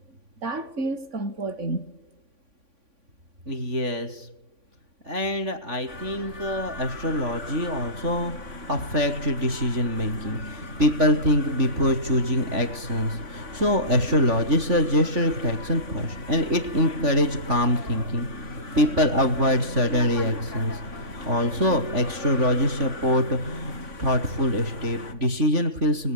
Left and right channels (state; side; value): late; left; 3.5 ms